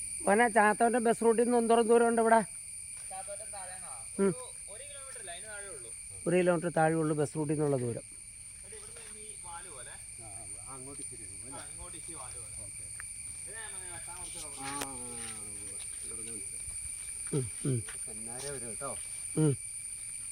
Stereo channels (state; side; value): identical; both; correlation 1.00